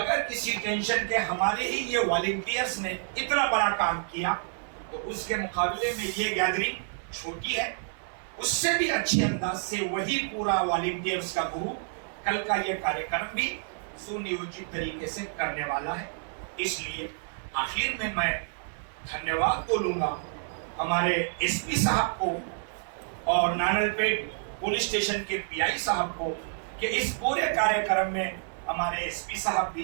किसी टेंशन के। हमारे ही ये वॉलंटियर्स ने इतना बड़ा काम किया, तो उसके मुकाबले में ये गैदरिंग छोटी है। उससे भी अच्छे अंदाज से वही पूरा वॉलंटियर्स का ग्रुप कल का ये कार्यक्रम भी सुनियोजित तरीके से करने वाला है। इसलिए आखिर में मैं धन्यवाद बोलूंगा हमारे एसपी साहब को और नानलपेट पुलिस स्टेशन के पीआई साहब को कि इस पूरे कार्यक्रम में हमारे एसपी साहब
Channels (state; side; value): silent; left; 59 dB below the other